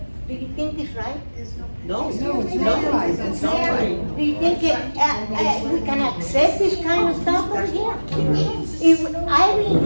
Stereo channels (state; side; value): inverted; both; correlation -1.00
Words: Do you think it's right? No, it's not right, it's not right. Do you think we can accept this kind of stuff over here? I've been